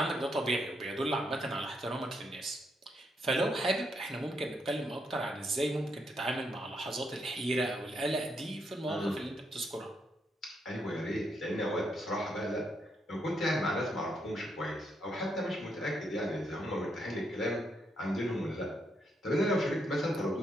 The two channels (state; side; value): normal; both; correlation 0.78